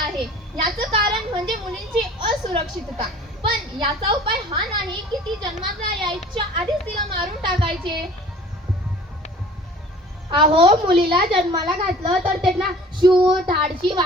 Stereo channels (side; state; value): both; normal; correlation 0.47